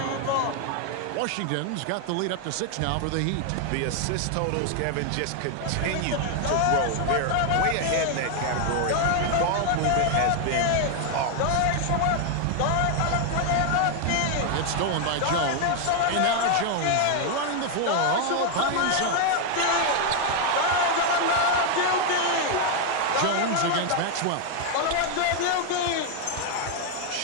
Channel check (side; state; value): both; different; correlation 0.01